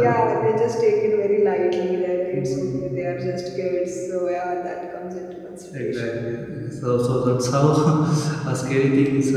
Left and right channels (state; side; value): identical; both; correlation 1.00